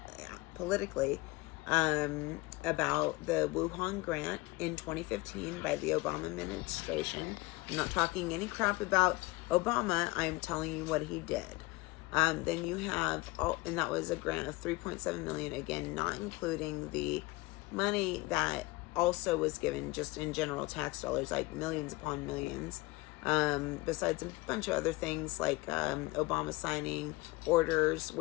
politically about the Wuhan grant in 2015 by the Obama administration. I'm not talking any crap about Obama. I'm telling you what he did. Then you have, and that was a grant of $3.7 million, again, not including the money that also was given just in general tax dollars, like millions upon millions. Besides a bunch of other things like Obama signing orders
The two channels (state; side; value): quieter; right; 22.1 dB